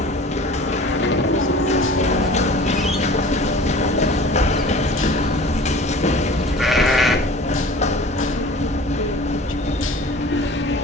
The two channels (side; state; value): both; normal; correlation 0.42